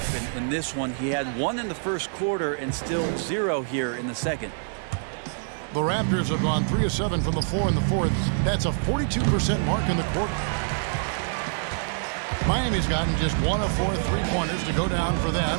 In this one, he had 1 in the first quarter and still 0 here in the second. The Raptors have gone 3 of 7 from the floor in the fourth. That's a 42% mark in the quarter. Miami's gotten just 1 of 4 3-pointers to go down for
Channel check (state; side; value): silent; left; digital silence